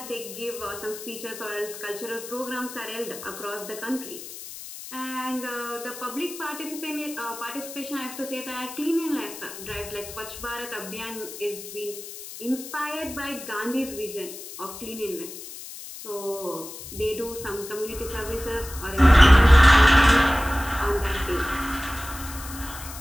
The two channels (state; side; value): noise; left; hiss, 12 dB below the sound